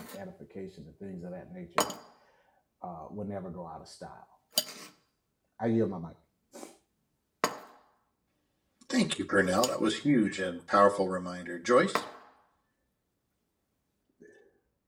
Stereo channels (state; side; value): identical; both; correlation 1.00